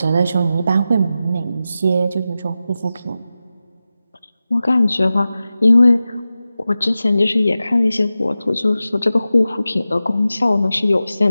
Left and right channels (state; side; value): inverted; both; correlation -0.93